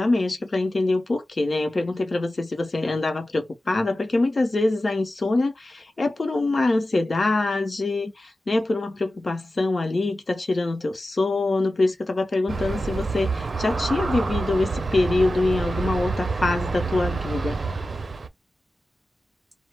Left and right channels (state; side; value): normal; both; correlation 0.94